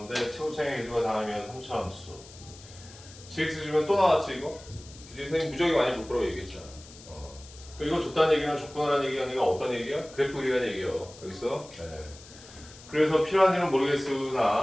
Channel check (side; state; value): left; noise; hiss, 19 dB below the sound